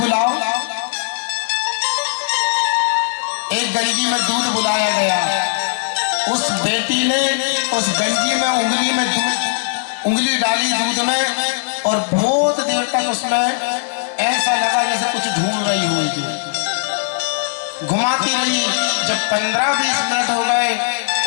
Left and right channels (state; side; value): silent; right; digital silence